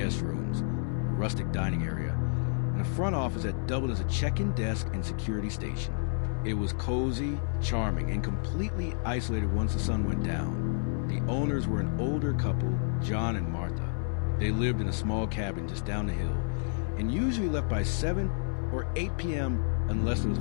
rooms, a rustic dining area, and a front office that doubled as a check-in desk and security station. It was cozy, charming, and completely isolated once the sun went down. The owners were an older couple, John and Martha. They lived in a small cabin just down the hill, and usually left by 7 or 8 p.m. unless there was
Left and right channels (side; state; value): right; silent; 58 dB below the other